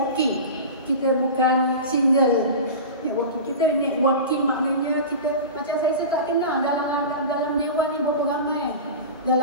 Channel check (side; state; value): both; inverted; correlation -0.30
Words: Kita bukan single networking. Kita networking maknanya kita, macam saya tak kenal dalam dewan ni berapa ramai